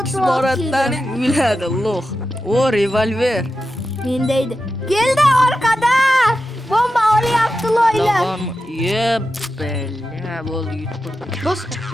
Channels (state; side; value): normal; both; correlation 0.90